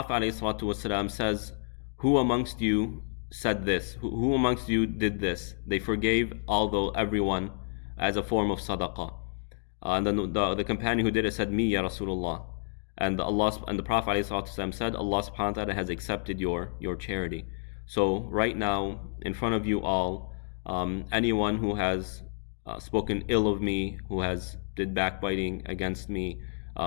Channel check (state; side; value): silent; right; digital silence